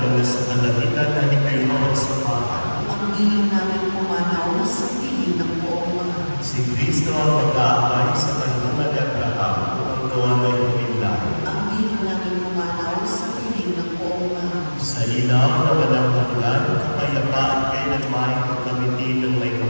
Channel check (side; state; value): both; inverted; correlation -1.00